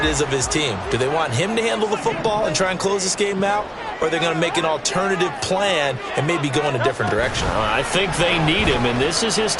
is of his team. Do they want him to handle the football and try and close this game out? Or are they going to make an alternative plan and maybe go in a different direction? I think they need him, and this is his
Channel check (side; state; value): both; identical; correlation 1.00